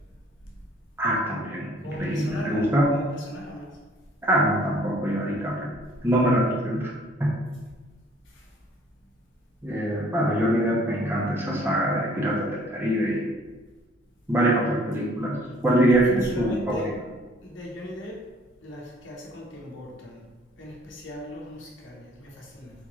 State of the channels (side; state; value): both; normal; correlation 0.57